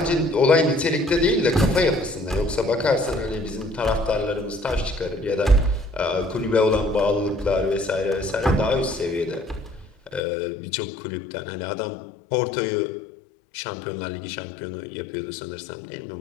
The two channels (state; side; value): drops out; right; at 10.2 s